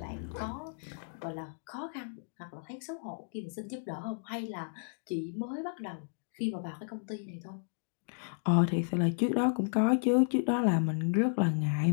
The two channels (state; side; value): silent; right; digital silence